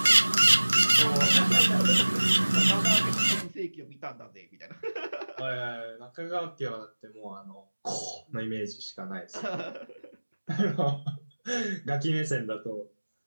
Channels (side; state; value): both; inverted; correlation -1.00